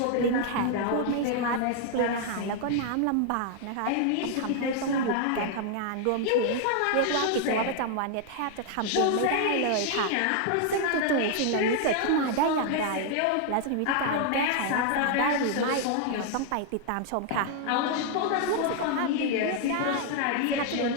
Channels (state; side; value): different; both; correlation 0.00